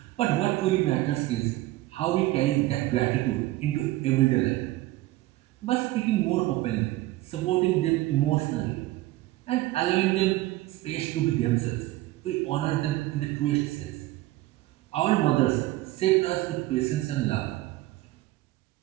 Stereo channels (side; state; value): left; quieter; 17.4 dB